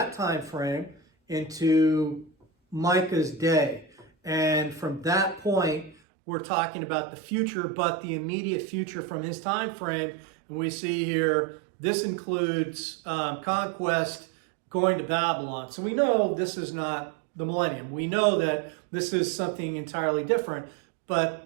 time frame into Micah's day. And from that point, we're talking about the future, but the immediate future from his time frame. And we see here, this includes conquest, going to Babylon. So we know this is not the millennium. We know that this is something entirely different, but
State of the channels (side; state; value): left; drops out; at 6.0 s